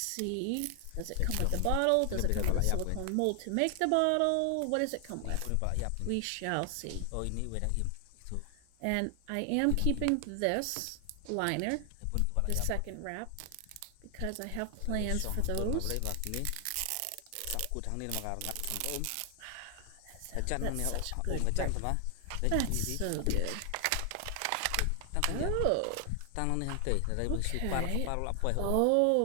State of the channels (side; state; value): both; different; correlation 0.00